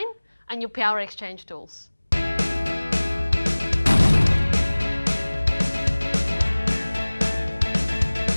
and your power exchange tools. So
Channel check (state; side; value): inverted; both; correlation -1.00